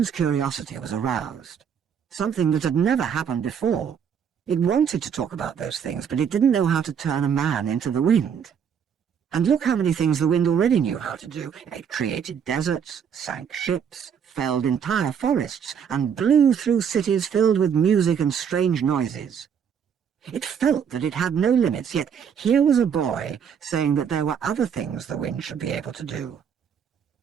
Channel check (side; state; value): left; quieter; 7.6 dB